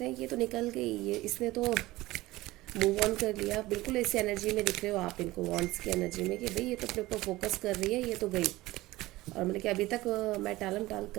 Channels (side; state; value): left; quieter; 18.4 dB